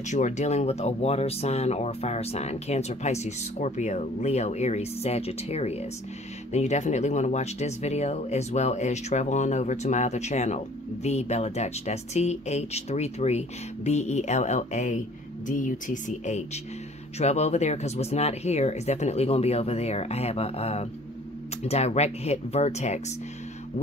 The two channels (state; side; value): normal; both; correlation 0.53